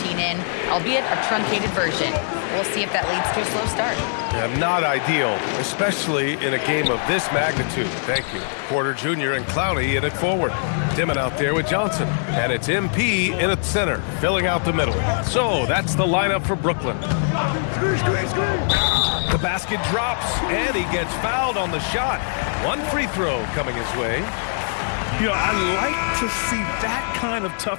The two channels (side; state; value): right; silent; 64 dB below the other